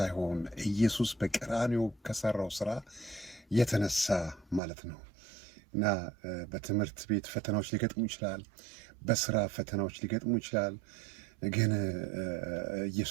ኢየሱስ በቀራንዮ ከሰራው ስራ የተነሳ ማለት ነው። እና በትምህርት ቤት ፈተናዎች ሊገጥሙ ይችላል፣ በስራ ፈተናዎች ሊገጥሙ ይችላል። ግን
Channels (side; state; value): left; drops out; at 4.6 s